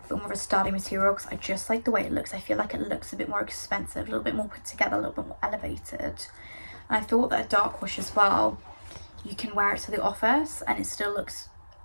but more of a sturdy material, because I just like the way it looks. I feel like it looks a bit more expensive, a little bit more put together, a little bit more elevated. And I thought that a dark wash as well, you can wear it to the office and it still looks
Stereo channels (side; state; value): both; inverted; correlation -1.00